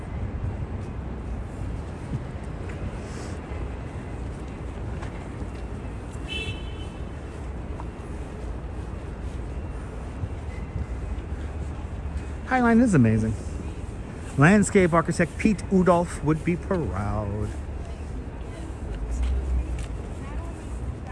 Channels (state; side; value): identical; both; correlation 1.00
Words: Highline is amazing. Landscape architect Pete Udolph would be proud.